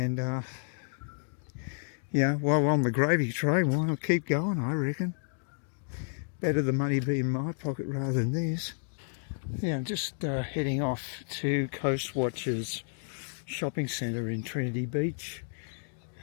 yeah, while we're on the gravy train, why not keep going, I reckon. Better the money be in my pocket rather than theirs. Yeah, I'm just heading off to Coast Watchers shopping centre in Trinity Beach.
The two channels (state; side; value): silent; right; digital silence